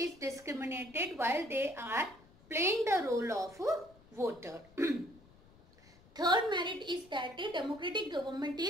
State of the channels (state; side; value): noise; left; rumble, 26 dB below the sound